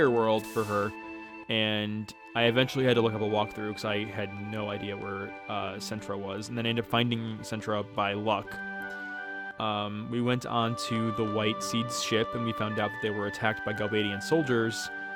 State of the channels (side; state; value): both; identical; correlation 1.00